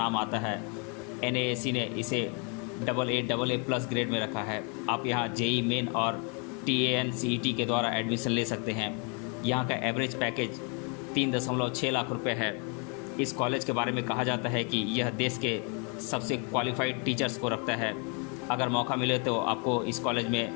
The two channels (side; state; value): right; quieter; 35.7 dB